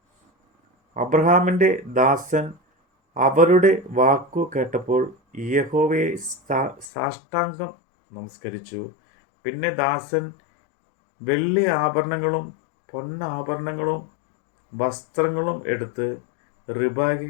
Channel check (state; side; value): drops out; right; at 6.9 s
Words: അബ്രഹാമിൻ്റെ ദാസൻ അവരുടെ വാക്കു കേട്ടപ്പോൾ യഹോവയെ സാഷ്ടാംഗം നമസ്കരിച്ചു. പിന്നെ ദാസൻ വെള്ളി ആഭരണങ്ങളും പൊന്നാഭരണങ്ങളും വസ്ത്രങ്ങളും എടുത്ത്